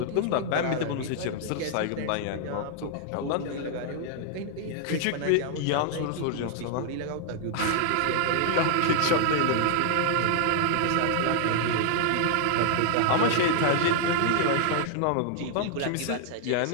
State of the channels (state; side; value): different; both; correlation 0.00